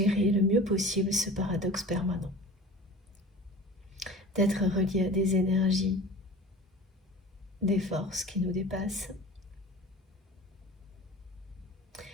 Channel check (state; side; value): normal; both; correlation 0.39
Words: le mieux possible ce paradoxe permanent, d'être relié à des énergies, des forces qui nous dépassent